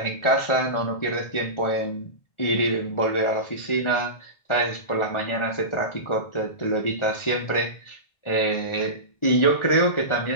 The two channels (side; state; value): right; late; 1.4 ms